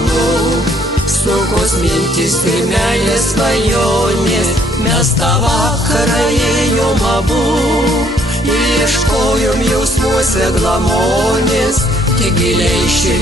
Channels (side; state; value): both; normal; correlation 0.65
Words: sunkus mintis ir meilės svajonės. Mes tą vakarą ėjom abu ir ieškojom jausmuose glamonės, tik giliai